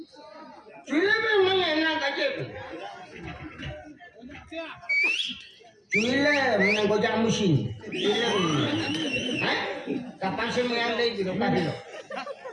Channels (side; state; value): both; identical; correlation 1.00